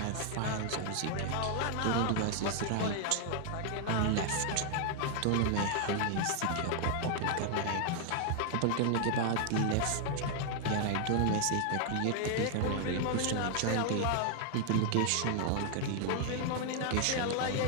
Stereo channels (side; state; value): both; different; correlation 0.00